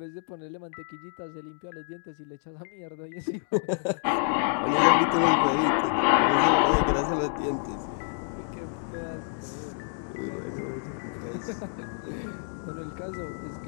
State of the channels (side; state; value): right; silent; digital silence